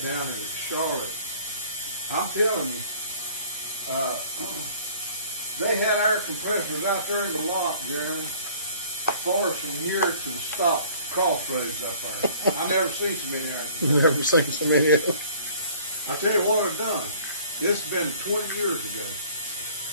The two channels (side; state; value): both; inverted; correlation -0.51